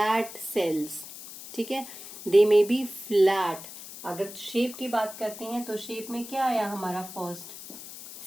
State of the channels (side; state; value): left; noise; hiss, 13 dB below the sound